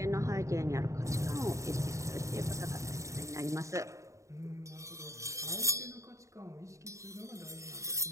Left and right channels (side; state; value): left; late; 0.15 ms